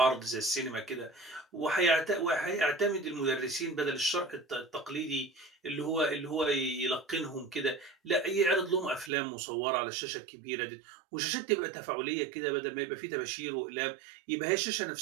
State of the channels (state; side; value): drops out; left; at 9.1 s